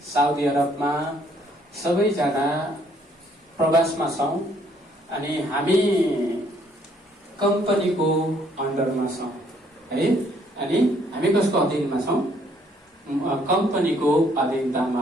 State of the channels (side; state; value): both; normal; correlation 0.66